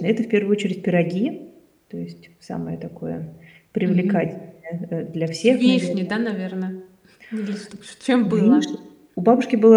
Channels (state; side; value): identical; both; correlation 1.00